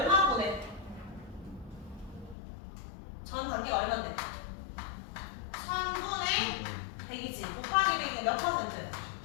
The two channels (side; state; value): right; drops out; at 2.4 s